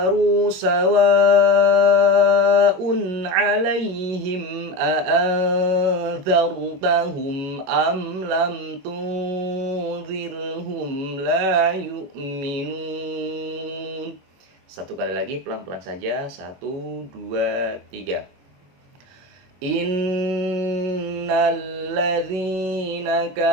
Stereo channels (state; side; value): late; left; 21 ms